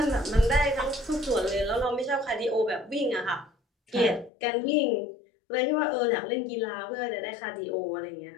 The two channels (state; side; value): drops out; right; at 4.3 s